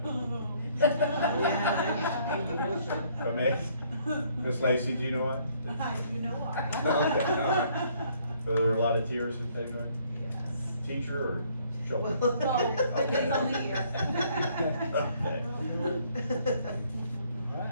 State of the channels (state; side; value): inverted; both; correlation -0.64